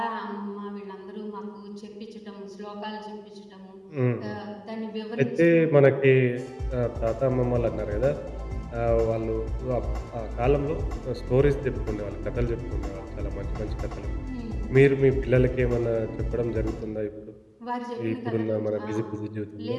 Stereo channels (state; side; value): identical; both; correlation 1.00